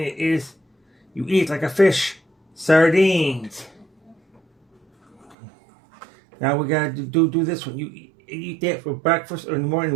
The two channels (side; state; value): left; drops out; at 5.4 s